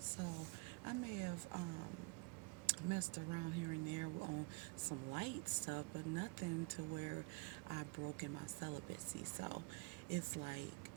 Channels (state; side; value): quieter; left; 26.4 dB